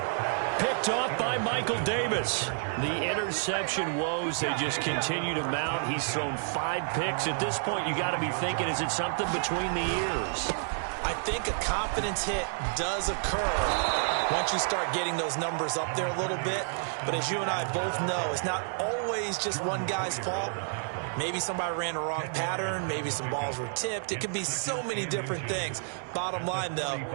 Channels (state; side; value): silent; left; digital silence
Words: Picked off by Michael Davis. The interception woes, they just continue to mount. He's thrown 5 picks. At this point, you got to be thinking, is it something between the ears? I think a confidence hit does occur once you start getting those numbers up there a little bit. But as you and I both know, it's not always just one guy's fault. Maybe somebody ran a wrong pattern. Maybe some balls were tipped. It could be so many different things. Bottom line, though,